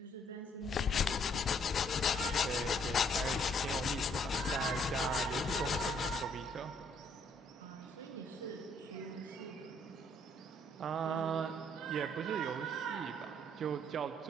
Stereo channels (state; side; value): normal; both; correlation 0.67